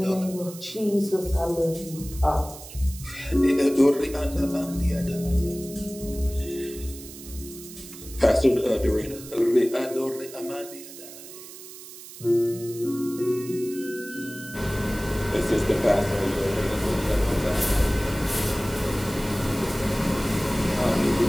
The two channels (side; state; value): right; noise; hiss, 15 dB below the sound